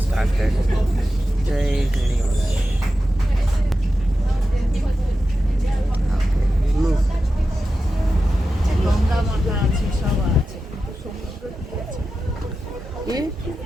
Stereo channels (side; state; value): both; normal; correlation 0.92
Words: গঙ্গা মাথা আছে, সব আছে, কিন্তু সমুদ্র কি আছে?